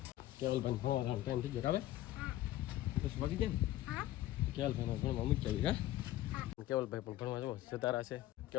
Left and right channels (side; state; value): right; quieter; 14.8 dB